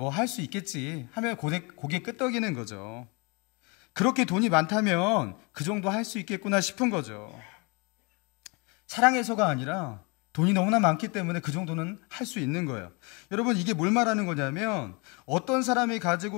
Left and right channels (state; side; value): quieter; right; 30.3 dB